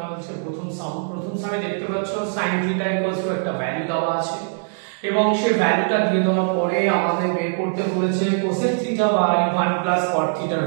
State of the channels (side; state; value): left; silent; digital silence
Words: প্রথম সামে দেখতে পাচ্ছ sin θ = একটা ভ্যালু দেওয়া আছে এবং সেই ভ্যালুটা দিয়ে দেওয়ার পরে আমাদের বের করতে বলেছে cosec θ বাই 1 প্লাস cot θ এর